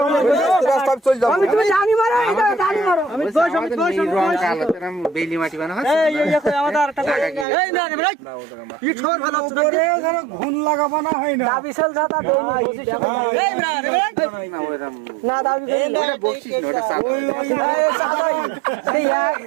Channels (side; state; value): left; drops out; at 7.5 s